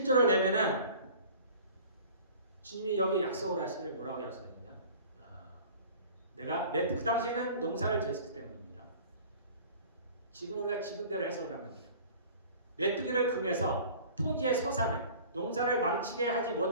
내면은 주님이 여기 약속을 하시기를 뭐라고 약속했냐? 내가 그 당시에는 농사를 지었기 때문입니다. 지금 우리가 지금대로 해석을 하면 돼요. 메뚜기를 금해서 토지의 소산을 농사를 망치게 하지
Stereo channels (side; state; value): both; inverted; correlation -0.45